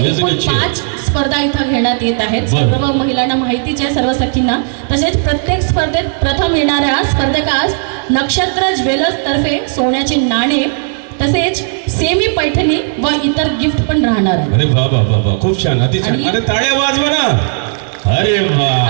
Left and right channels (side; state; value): left; silent; 64 dB below the other